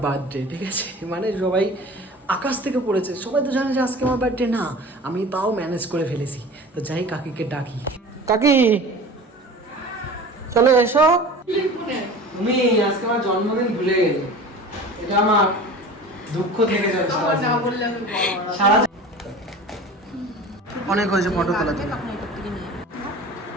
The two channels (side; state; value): both; normal; correlation 0.38